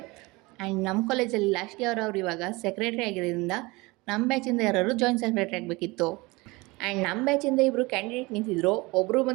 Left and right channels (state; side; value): quieter; left; 23.6 dB